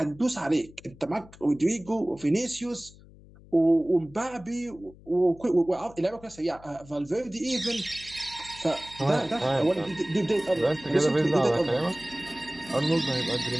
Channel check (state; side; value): noise; left; hum, 22 dB below the sound